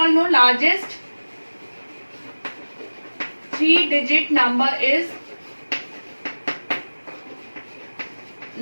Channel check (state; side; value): inverted; both; correlation -1.00